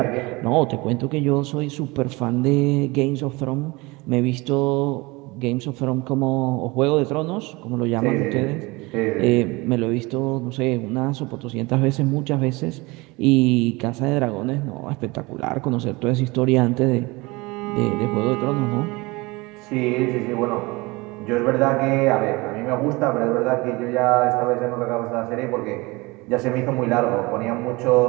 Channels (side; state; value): left; quieter; 23.9 dB